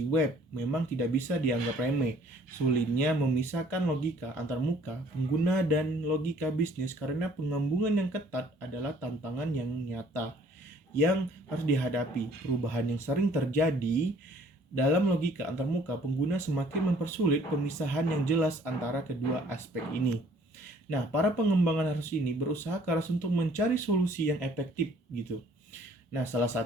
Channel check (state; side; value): normal; both; correlation 0.58